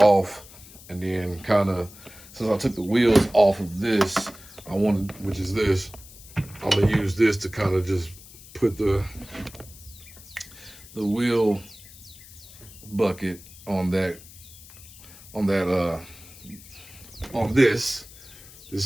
and then kind of, since I took the wheels off of this, which is this, I'm gonna use this to kind of just put the wheel bucket on that on that on this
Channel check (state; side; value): noise; left; hiss, 19 dB below the sound